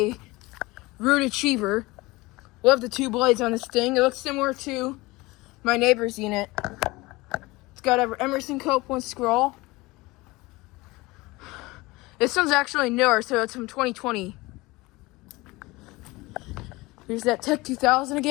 Ruud Achiever. Love the 2 blades on this thing. It looks similar to my neighbor's unit. It's got an Emerson Copeland scroll. This one's actually newer, so it's from 2020. Here's that Tech 2000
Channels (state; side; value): quieter; right; 21.8 dB